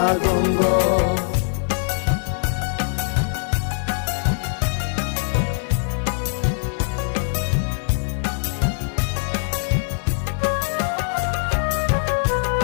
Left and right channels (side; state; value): right; silent; digital silence